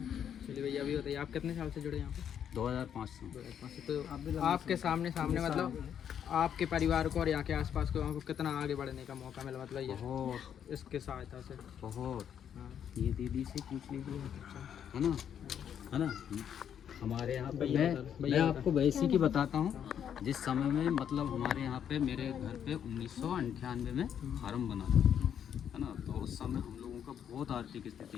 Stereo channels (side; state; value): right; quieter; 8.9 dB